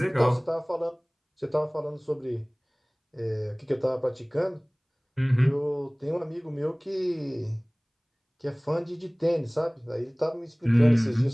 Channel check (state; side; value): identical; both; correlation 1.00